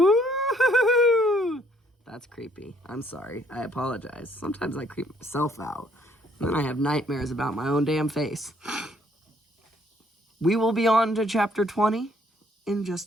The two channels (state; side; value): normal; both; correlation 0.65